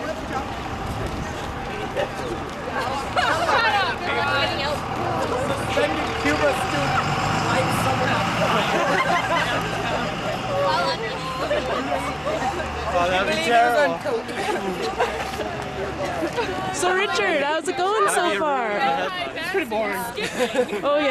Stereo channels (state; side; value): identical; both; correlation 1.00